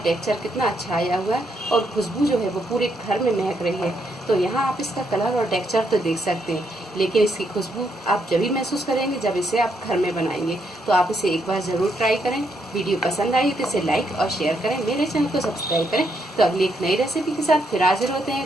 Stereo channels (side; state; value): both; normal; correlation 0.77